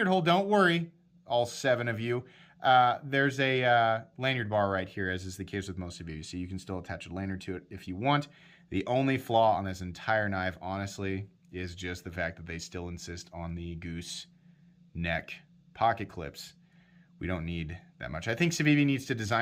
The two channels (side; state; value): both; identical; correlation 1.00